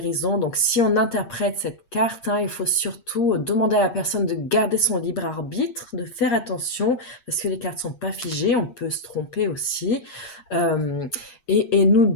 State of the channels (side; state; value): right; late; 8.5 ms